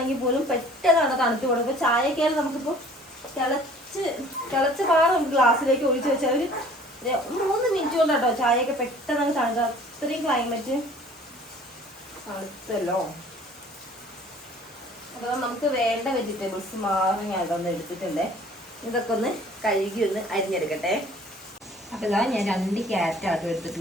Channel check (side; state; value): both; normal; correlation 0.51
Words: പോലും പെട്ടെന്നാണ് തണുത്ത് പോകുന്നത്. ഇപ്പോൾ ചായയൊക്കെ ആയാലും നമുക്കിപ്പോൾ തിളച്ച പാറ നമുക്ക് ഗ്ലാസ്സിലേക്ക് ഒഴിച്ച് വെച്ചാൽ ഒരു 3 മിനിറ്റ് കൊണ്ട് കേട്ടോ ചായയൊക്കെ പെട്ടെന്ന് തണുക്കുക. അത്രയും ക്ലൈമറ്റ് തണുത്തല്ലോ. അപ്പോൾ നമുക്ക് വേണ്ട വെജിറ്റബിൾസ് മാറി ഞാൻ അതൊന്ന് എടുത്തിട്ടുണ്ട്. ഇതൊക്കെ ഒന്ന് കഴുകി ഒന്ന് അരിഞ്ഞെടുക്കട്ടെ. അപ്പോൾ ഇതാ ഞാൻ 2 ക്യാരറ്റാട്ടോ